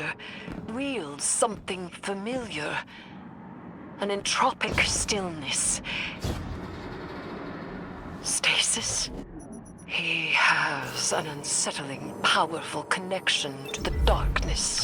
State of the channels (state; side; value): identical; both; correlation 1.00